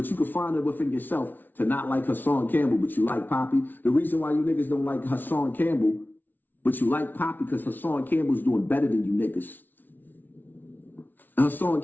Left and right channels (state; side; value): late; right; 0.087 ms